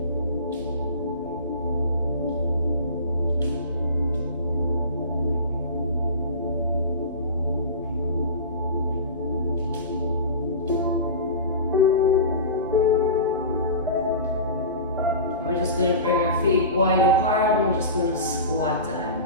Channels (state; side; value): inverted; both; correlation -0.32